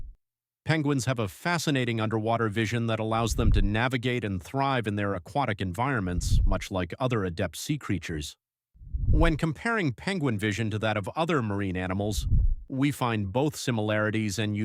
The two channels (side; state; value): both; identical; correlation 1.00